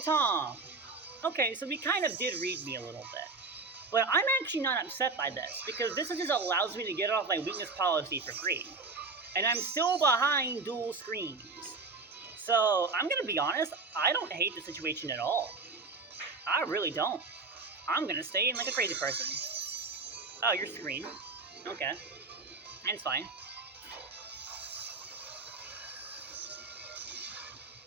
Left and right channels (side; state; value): left; quieter; 4.0 dB